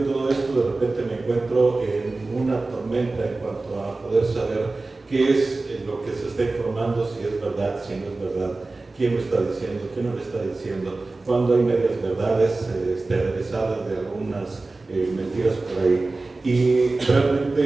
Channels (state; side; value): quieter; left; 3.4 dB